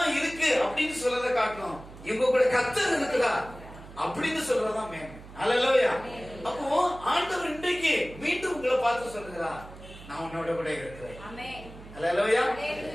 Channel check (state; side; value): noise; right; hum, 17 dB below the sound